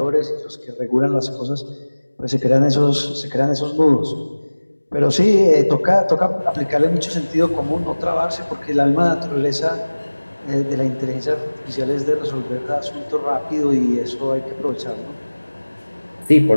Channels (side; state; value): both; inverted; correlation -1.00